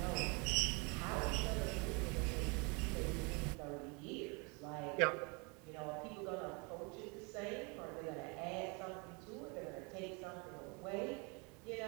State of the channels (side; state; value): left; quieter; 30.7 dB